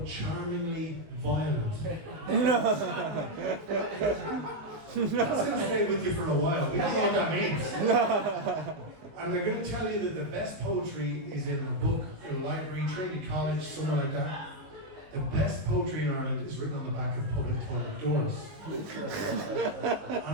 charmingly violent. That's going to stay with you for a while. We don't know what that means. And they're going to tell you that the best poetry is in a book, in a library, Trinity College, somewhere like that. The best poetry in Ireland is written on the back of public toilet doors. And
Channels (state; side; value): late; left; 19 ms